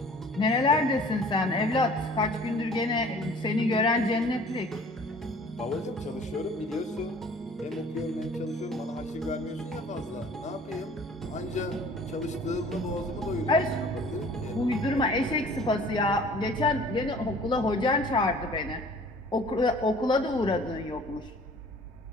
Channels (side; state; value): both; normal; correlation 0.50